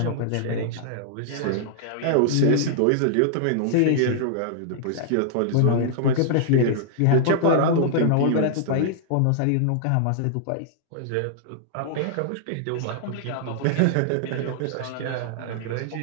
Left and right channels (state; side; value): different; both; correlation -0.01